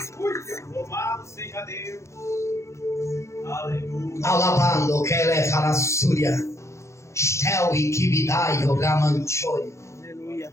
Louvado seja Deus. Aleluia. Alabando que ele fará súria. Estel e kibidai o gamanchoi. Aleluia.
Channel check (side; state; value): right; late; 0.14 ms